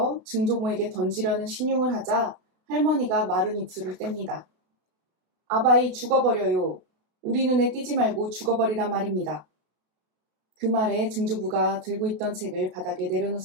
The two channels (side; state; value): left; late; 32 ms